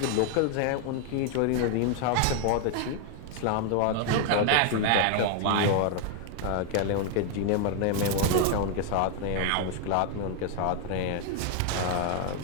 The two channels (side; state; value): both; different; correlation 0.00